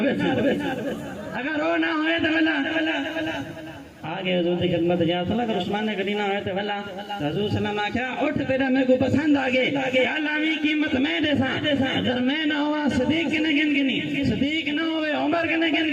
سکتے اگر وہ نہ ہوئے تو بلا آگے حضور کی خدمت جا صلی اگر عثمان غنی نہ ہوئے تو بلا حضور صلی اللہ علیہ وسلم آکھا اٹھ تیرا میرے کو پسند آگے علاوی قیمت میں دے سا اگر میں نہ ہوا صدیق کنے گن گنی صدیق نہ ہوئے عمر کنے گن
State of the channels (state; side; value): identical; both; correlation 1.00